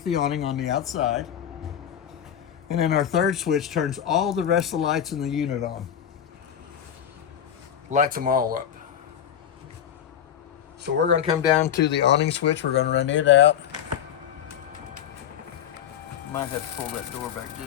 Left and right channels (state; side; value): quieter; right; 9.4 dB